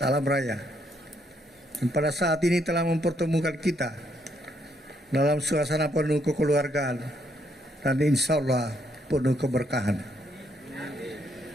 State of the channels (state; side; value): normal; both; correlation 0.73